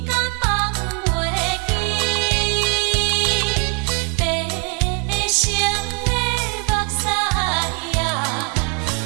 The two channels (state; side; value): quieter; left; 37.1 dB